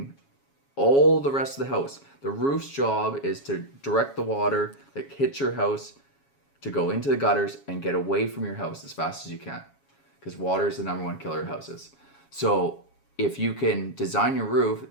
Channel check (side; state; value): right; late; 7.2 ms